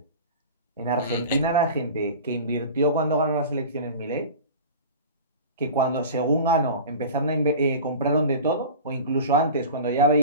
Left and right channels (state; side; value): inverted; both; correlation -0.35